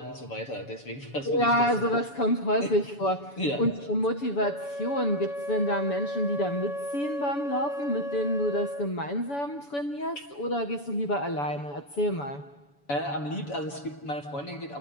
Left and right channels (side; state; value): right; late; 7.0 ms